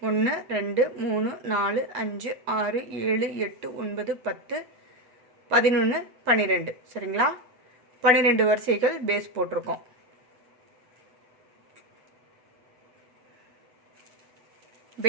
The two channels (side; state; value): left; late; 7.9 ms